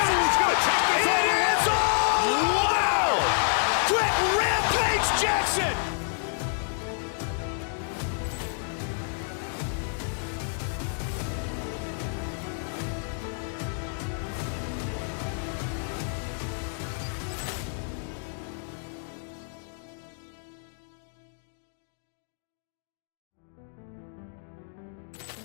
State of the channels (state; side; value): silent; right; 56 dB below the other